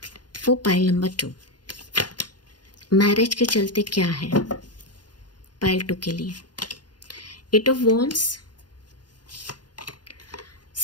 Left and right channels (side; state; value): right; late; 0.70 ms